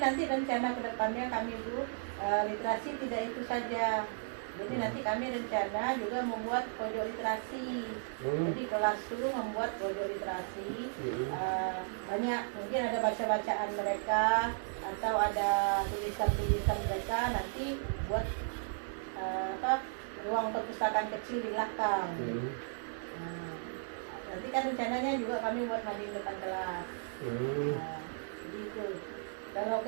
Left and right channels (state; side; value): silent; left; digital silence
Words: nanti rencana kedepannya kami itu literasi tidak itu saja. Jadi nanti kami rencana juga membuat pojok literasi. Jadi kelas itu membuat pojok literasi. Banyak, mungkin ada baca-bacaan mereka atau ada tulisan-tulisan mereka, nanti buat ruang perpustakaan kecil di belakang. Nanti kan rencananya juga kami buat mading depan kelas. Jadi itu. Kalau